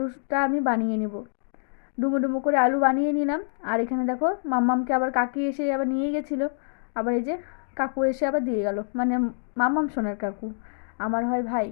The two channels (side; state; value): right; silent; digital silence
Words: আমি বানিয়ে নেব, ডুমো ডুমো করে আলু বানিয়ে নিলাম। আর এখানে দেখো মাম্মামকে আবার কাকি এসে আবার নিয়ে গেছিলো, আবার এই যে কাকু এসে আবার দিয়ে গেল, মানে মাম্মাম সোনার কাকু, আমার হয় ভাই।